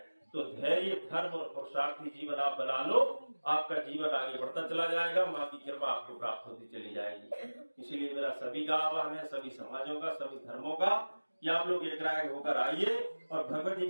तो धैर्य, धर्म और पुरुषार्थी जीवन आप बना लो, आपका जीवन आगे बढ़ता चला जाएगा, माँ की कृपा आपको प्राप्त होती चली जाएगी। इसीलिए मेरा सभी का आह्वान है, सभी समाजों का, सभी धर्मों का, कि आप लोग एक राय होकर आइए और भगवती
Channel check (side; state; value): both; inverted; correlation -1.00